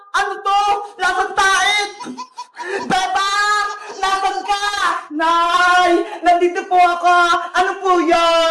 Ano to? Lasang tait! Bebang! Nasaan ka? Nay! Nandito po ako! Ano po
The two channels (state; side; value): identical; both; correlation 1.00